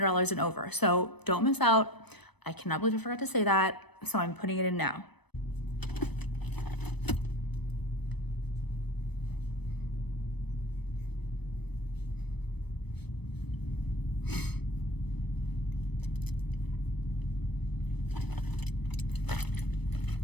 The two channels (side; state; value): right; late; 0.99 ms